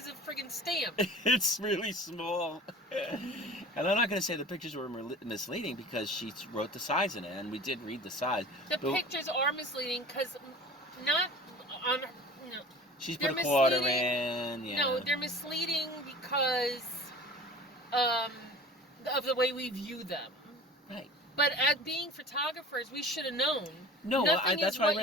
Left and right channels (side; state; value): both; normal; correlation 0.41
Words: of a friggin' stamp. It's really small. And I'm not going to say the pictures were misleading because she wrote the size in it, and we did read the size. The pictures are misleading because not on. No, she's put a quarter in. Yeah. No, they're misleading because of the way we view them. Right. But as being photographers, we should have known. No, that's why I